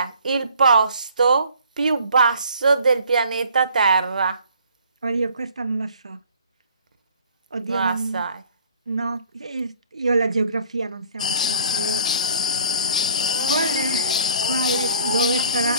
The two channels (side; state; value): both; inverted; correlation -0.56